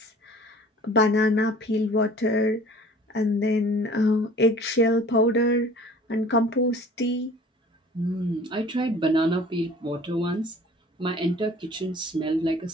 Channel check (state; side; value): normal; both; correlation 0.48